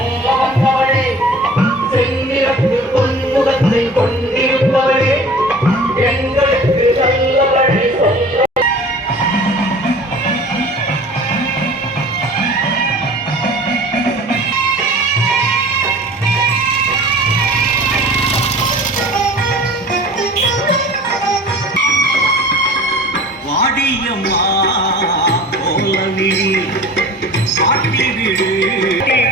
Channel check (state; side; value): normal; both; correlation 0.43